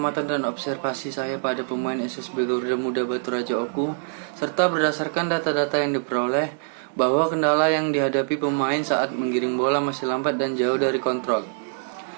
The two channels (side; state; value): left; silent; digital silence